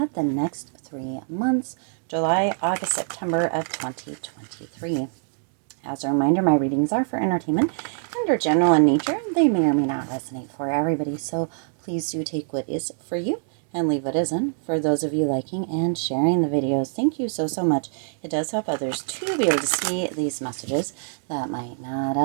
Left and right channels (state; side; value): silent; left; digital silence